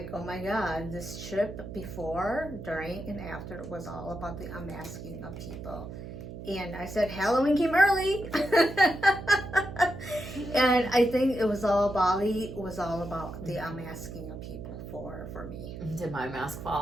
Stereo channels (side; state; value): right; noise; hum, 10 dB below the sound